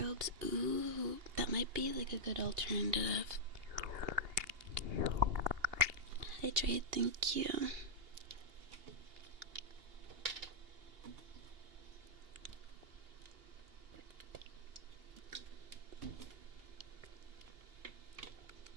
ooh, that might be like a good alternative. Hydrate, thank you.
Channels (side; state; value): left; late; 2.8 ms